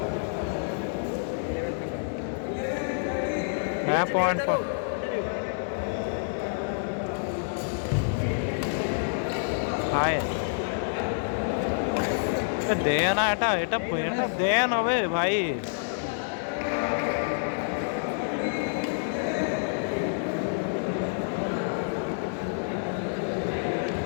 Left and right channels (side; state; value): right; silent; 59 dB below the other